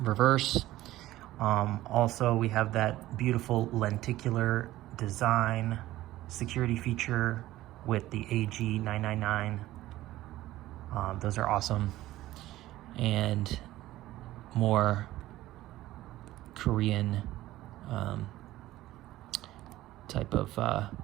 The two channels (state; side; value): quieter; left; 15.7 dB